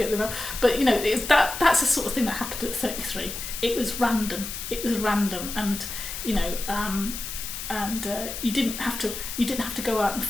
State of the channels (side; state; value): left; noise; hiss, 7 dB below the sound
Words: them out. But that's the sort of thing that happened at 33. It was random, and you didn't have to go out and